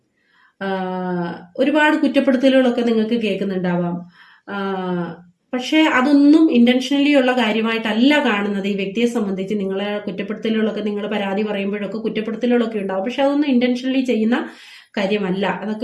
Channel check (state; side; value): identical; both; correlation 1.00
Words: ഒരുപാട് കുറ്റപ്പെടുത്തലുകളൊക്കെ നിങ്ങൾക്ക് കേൾക്കുന്നുണ്ടാവാം. പക്ഷേ അതൊന്നും ഇന്റൻഷനലി ഉള്ള കാര്യമായിട്ടല്ല കാണുന്നത്. ഈ വ്യക്തിയെ സംബന്ധിച്ച് നിങ്ങളെ കുറ്റപ്പെടുത്തലുകളൊക്കെ, നിങ്ങൾ പരാതി പറയുമ്പോഴൊക്കെ കുറ്റപ്പെടുത്തലുകളൊക്കെ ഉണ്ടാവും. പക്ഷെ അതൊന്നും ഇന്റൻഷനലി ചെയ്യുന്ന കാര്യമല്ല.